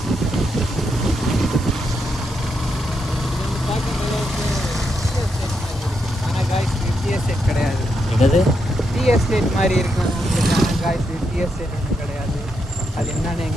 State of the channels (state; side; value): normal; both; correlation 0.81